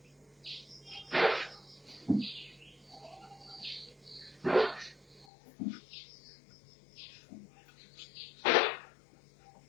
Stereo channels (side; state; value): right; drops out; at 5.2 s